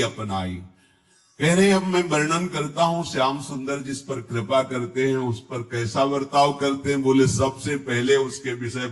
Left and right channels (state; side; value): identical; both; correlation 1.00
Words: अपनाई। कह रहे अब मैं वर्णन करता हूं श्याम सुंदर जिस पर कृपा करते हैं उस पर कैसा बर्ताव करते हैं। बोले सबसे पहले उसके विषय